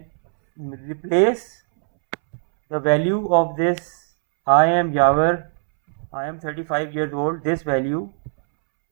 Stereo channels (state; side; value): silent; left; 65 dB below the other